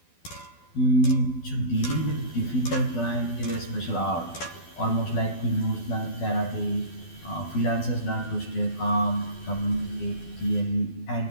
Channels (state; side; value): late; right; 12 ms